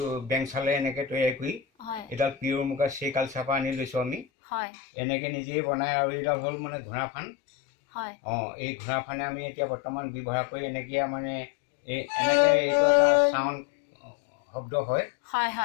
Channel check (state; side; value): drops out; right; at 4.2 s